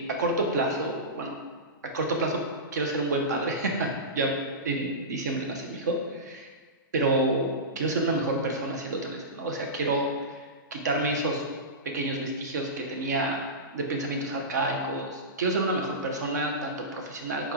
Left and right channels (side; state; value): both; normal; correlation -0.18